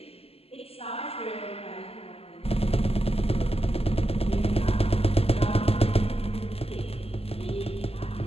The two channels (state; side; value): late; right; 0.29 ms